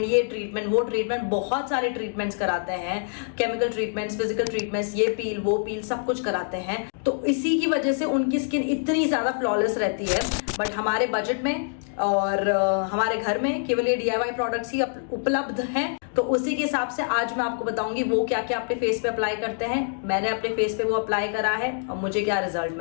ये ट्रीटमेंट, वो ट्रीटमेंट, बहुत सारे ट्रीटमेंट्स कराते हैं. केमिकल ट्रीटमेंट्स, फिजिकल ट्रीटमेंट्स, ये पील, वो पील, सब कुछ कराते हैं. तो इसी की वजह से उनकी स्किन इतनी ज्यादा फ्लॉलेस रहती है. बट हमारे बजट में और हमारे घर में केवल ये DIY प्रोडक्ट्स ही उपलब्ध हैं. तो उसी के हिसाब से आज मैं आपको बताऊंगी वो क्या क्या अपने फेस पे अप्लाई करते हैं. मैंने अपने फेस पे वो अप्लाई करा है और मुझे क्या रिजल्ट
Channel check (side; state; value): right; silent; digital silence